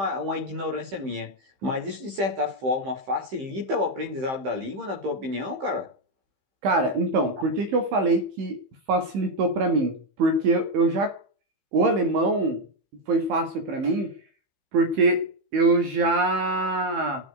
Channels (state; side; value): late; left; 15 ms